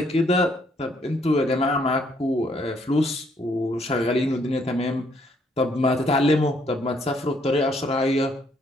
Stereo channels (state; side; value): normal; both; correlation 0.69